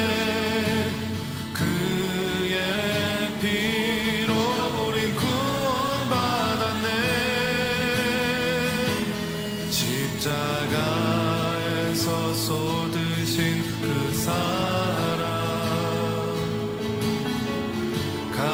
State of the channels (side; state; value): both; identical; correlation 1.00